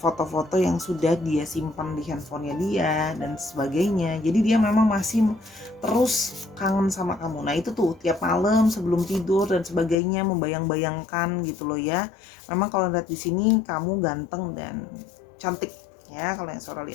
yang sudah dia simpan di handphonenya dia dan sebagainya. Jadi dia memang masih terus kangen sama kamu. Nah itu tuh tiap malam sebelum tidur dan sebagainya membayang-bayangkan gitu loh ya. Memang kalau lihat di sini kamu ganteng dan cantik ya kalau yang Sora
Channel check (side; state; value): right; drops out; at 10.0 s